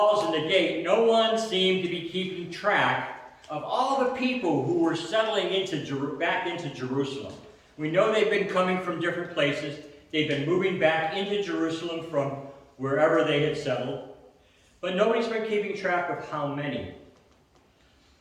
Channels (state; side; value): identical; both; correlation 1.00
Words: and the gate, no one seemed to be keeping track of all the people who were settling back into Jerusalem. We know they've been coming from different places. They've been moving back into Jerusalem from wherever they had settled. But nobody's been keeping track of how many.